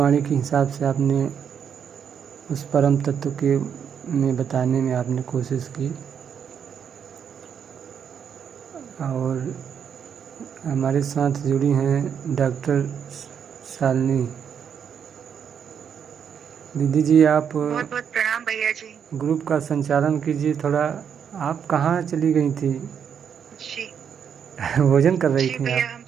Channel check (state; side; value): quieter; left; 7.8 dB